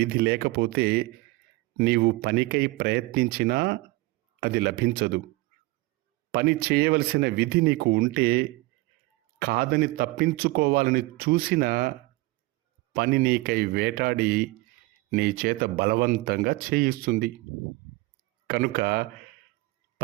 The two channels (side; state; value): left; quieter; 21.4 dB